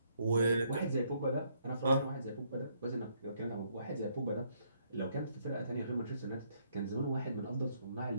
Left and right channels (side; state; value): both; inverted; correlation -0.70